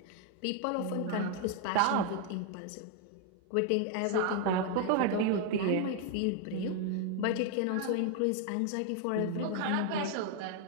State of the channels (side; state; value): both; different; correlation 0.00